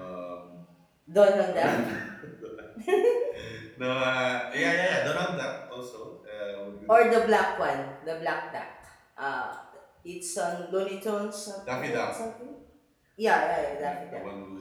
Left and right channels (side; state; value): both; identical; correlation 1.00